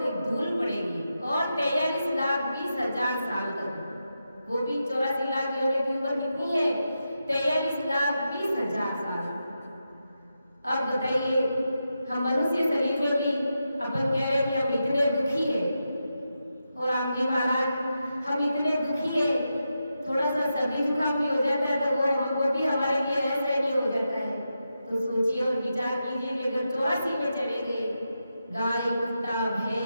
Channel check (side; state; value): both; inverted; correlation -0.88